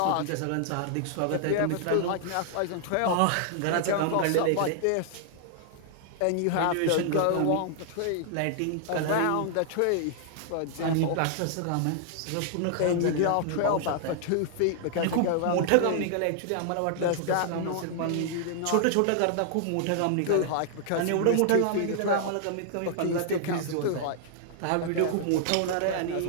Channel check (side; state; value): both; different; correlation -0.01